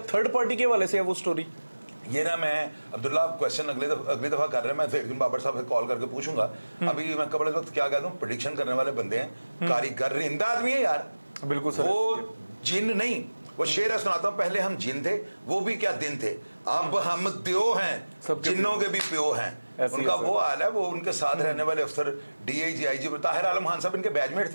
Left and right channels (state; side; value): inverted; both; correlation -1.00